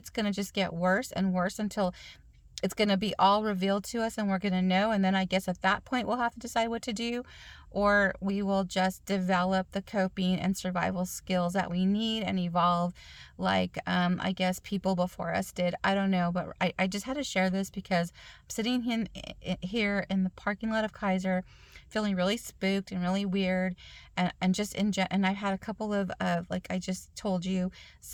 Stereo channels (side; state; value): both; identical; correlation 1.00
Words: going to just get worse and worse until it's going to be all revealed to us and we're going to know, and then I guess at that point we'll have to decide what to do, or we will just develop the coping and survival skills that we need and evolve like I guess people before us did. I don't know, but I just had to share this because I'm sitting here in the parking lot of Kaiser feeling really spooked and really weird, and just and I've had a couple of like I just told you,